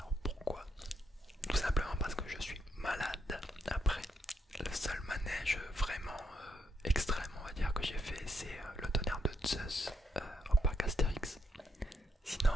pourquoi? Tout simplement parce que je suis malade. Après, le seul manège vraiment extrême, on va dire, que j'ai fait, c'est le tonnerre de Zeus au parc Astérix. Sinon,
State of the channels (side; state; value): both; normal; correlation 0.77